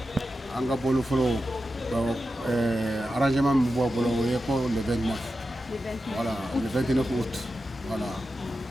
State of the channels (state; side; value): normal; both; correlation 0.91